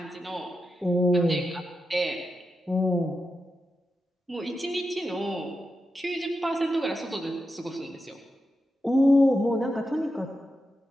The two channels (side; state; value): both; normal; correlation 0.89